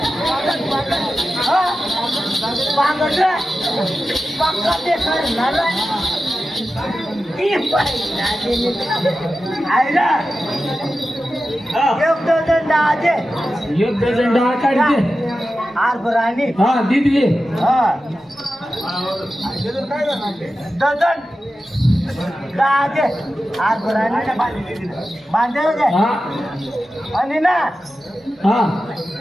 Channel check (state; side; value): normal; both; correlation 0.92